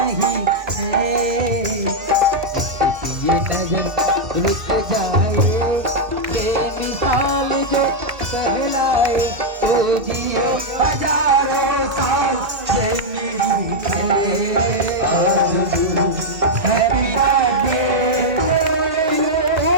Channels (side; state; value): left; late; 2.1 ms